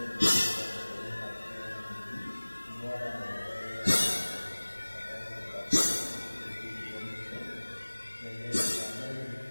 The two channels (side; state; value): both; inverted; correlation -1.00